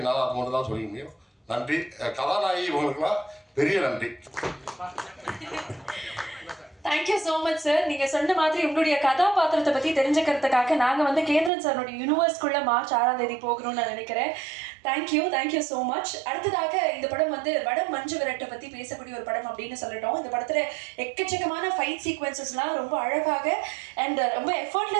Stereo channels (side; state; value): left; drops out; at 11.5 s